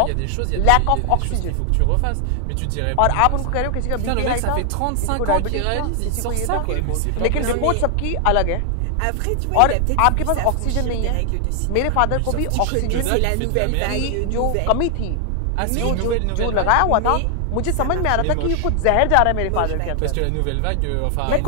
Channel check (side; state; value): both; different; correlation 0.00